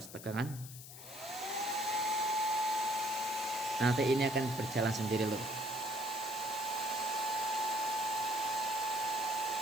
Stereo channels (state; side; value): noise; left; hiss, 14 dB below the sound